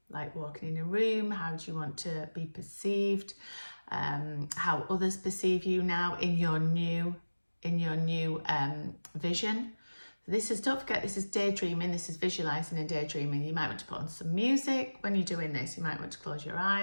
like walking in a room. How do you want to be perceived? How others perceive you now in your new vision. Don't forget, this is daydreaming. This is visualizing and daydreaming. You might want to put on some music when you're doing this. You might want to close your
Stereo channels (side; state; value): both; inverted; correlation -1.00